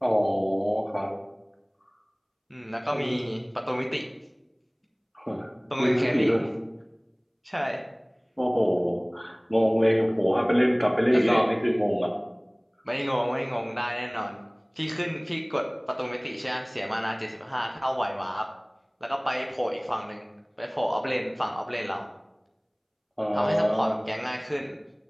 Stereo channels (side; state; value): both; identical; correlation 1.00